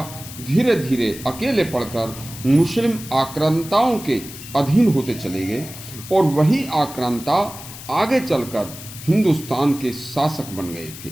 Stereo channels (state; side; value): noise; left; hiss, 14 dB below the sound